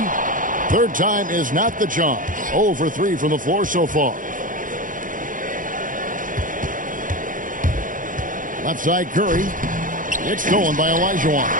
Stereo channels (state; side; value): late; left; 0.39 ms